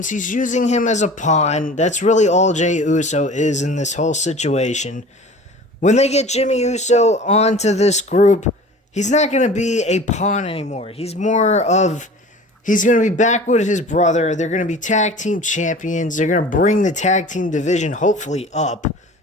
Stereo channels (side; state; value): both; normal; correlation 0.41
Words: He's using him as a pawn. That's really all Jey Uso is in this whole situation. When they get Jimmy Uso onto this group, he's not going to be a pawn anymore. He's going to be back with his brother. They're going to be tag team champions. They're going to bring the tag team division hopefully up,